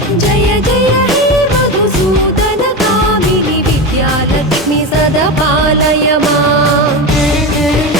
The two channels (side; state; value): both; normal; correlation 0.20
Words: जय जय हे मधुसूदन कामिनि विद्यालक्ष्मि सदा पालय माम्।